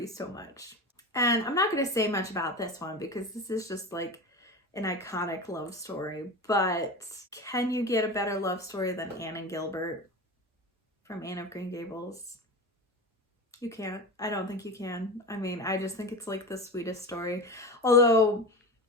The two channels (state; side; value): normal; both; correlation 0.27